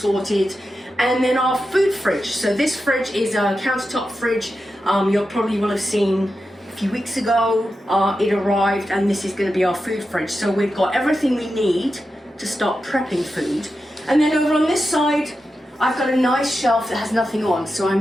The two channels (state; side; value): normal; both; correlation 0.90